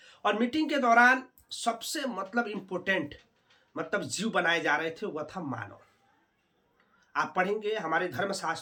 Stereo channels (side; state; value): both; identical; correlation 1.00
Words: और मीटिंग के दौरान सबसे मतलब इम्पोर्टेंट मतलब जीव बनाए जा रहे थे, वह था मानव। आप पढ़ेंगे हमारे